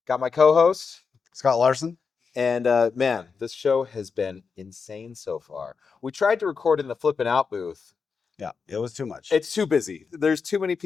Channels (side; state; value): right; quieter; 5.4 dB